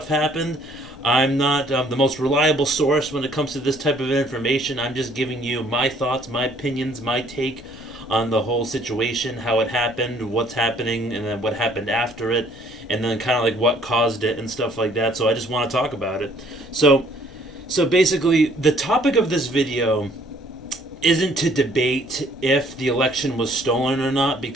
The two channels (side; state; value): left; noise; rumble, 22 dB below the sound